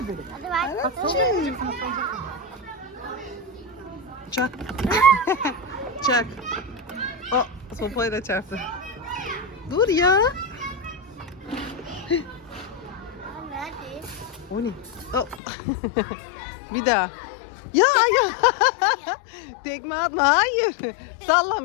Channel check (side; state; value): right; drops out; at 15.4 s